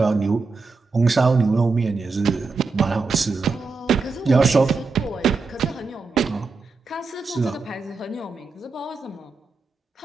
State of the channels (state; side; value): quieter; left; 4.2 dB